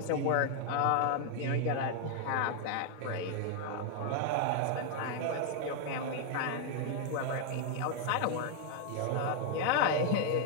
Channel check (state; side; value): different; both; correlation 0.00